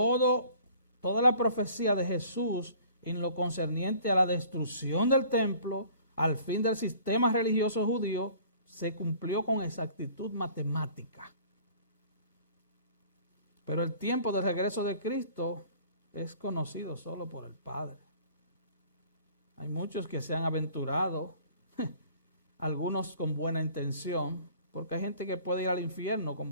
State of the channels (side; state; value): both; inverted; correlation -0.51